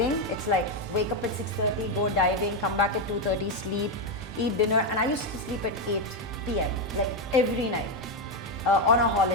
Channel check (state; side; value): normal; both; correlation 0.06